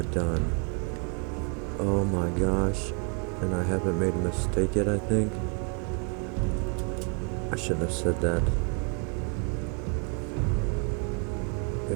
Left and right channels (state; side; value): quieter; left; 35.8 dB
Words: done. Oh my gosh. And I haven't made a mistake yet, I think. I shouldn't have said that.